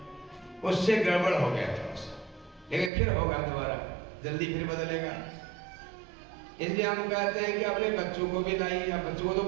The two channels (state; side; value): drops out; left; at 2.9 s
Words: उससे गड़बड़ हो गया था, लेकिन फिर होगा दोबारा, जल्दी फिर बदलेगा। इसलिए हम कहते हैं कि अपने बच्चों को भी लाइए। अब बच्चों को तो